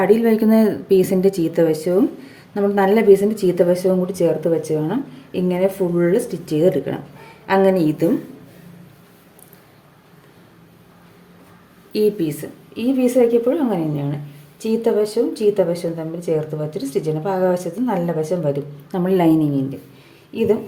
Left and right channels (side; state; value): both; identical; correlation 1.00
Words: അടിയിൽ വയ്ക്കുന്ന പീസിൻ്റെ ചീത്ത വശവും നമ്മൾ നല്ല പീസിൻ്റെ ചീത്ത വശവും കൂടി ചേർത്ത് വെച്ച് വേണം ഇങ്ങനെ ഫുള്ള് സ്റ്റിച്ച് ചെയ്തെടുക്കണം. അങ്ങനെ ഇതും ഈ പീസ് വയ്ക്കപ്പോഴും അങ്ങനെ തന്നെയാണ്. ചീത്ത വശവും തമ്മിൽ ചേർത്ത് വെച്ചിട്ട് സ്റ്റിച്ച് ചെയ്യണം. അപ്പോൾ ആകാശത്ത് നല്ല വശം വരും നമ്മൾ ലൈനിങ്ങിൻ്റെ. ഇതും